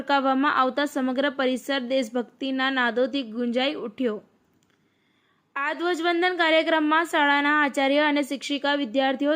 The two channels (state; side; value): identical; both; correlation 1.00